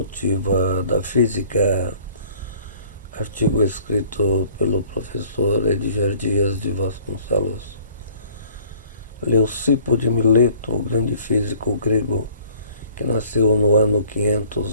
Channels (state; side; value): inverted; both; correlation -0.55